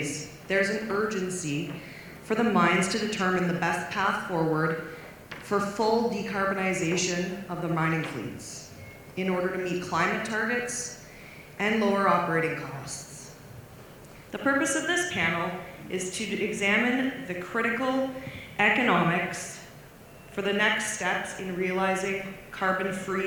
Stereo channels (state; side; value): identical; both; correlation 1.00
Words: there's an urgency for the mines to determine the best path forward for full decarbonization of the mining fleets in order to meet climate targets and lower operating costs. The purpose of this panel is to examine the critical economics for the next steps in realizing carbon-free